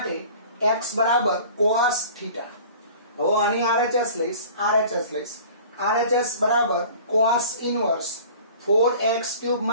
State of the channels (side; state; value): both; inverted; correlation -0.45